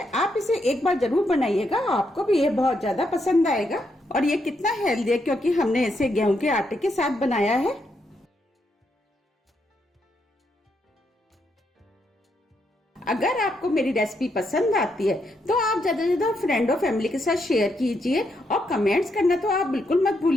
आप इसे एक बार जरूर बनाइएगा, आपको भी ये बहुत ज्यादा पसंद आएगा। और ये कितना हेल्दी है क्योंकि हमने इसे गेहूं के आटे के साथ बनाया है। अगर आपको मेरी रेसिपी पसंद आती है तो आप ज्यादा से ज्यादा फ्रेंड और फैमिली के साथ शेयर कीजिए और कमेंट्स करना तो आप बिल्कुल मत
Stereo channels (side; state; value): both; normal; correlation 0.79